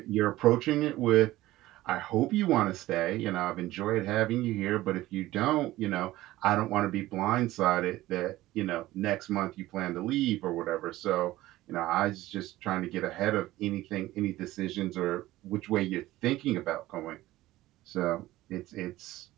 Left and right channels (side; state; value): left; quieter; 16.6 dB